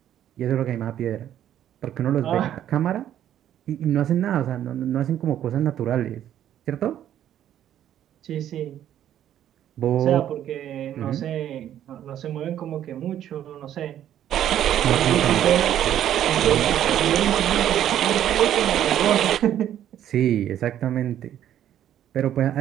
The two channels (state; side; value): quieter; left; 11.0 dB